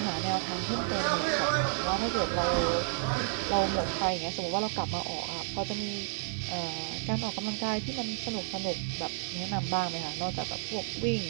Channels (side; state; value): left; silent; digital silence